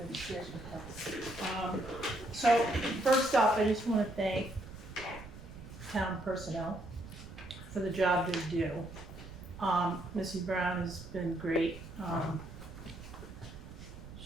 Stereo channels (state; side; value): noise; right; rumble, 14 dB below the sound